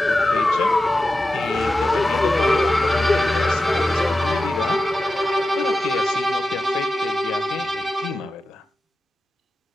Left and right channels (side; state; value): both; normal; correlation 0.92